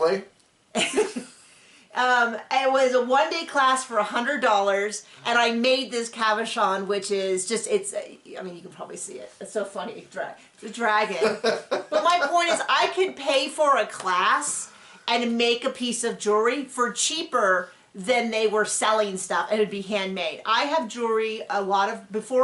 It was a 1-day class for $100, and I made this cabochon, which is just, I mean, you can probably see it. It's so funny. It's a dragon. But my point is, I could pay for a class and make a piece of jewelry for cheaper than they were selling stuff, and it'd be handmade. I have jewelry,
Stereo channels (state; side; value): identical; both; correlation 1.00